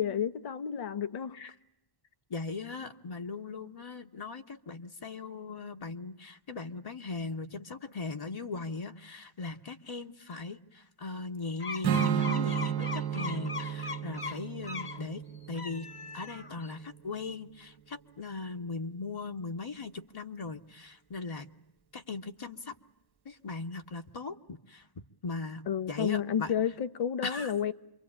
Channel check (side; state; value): right; late; 1.1 ms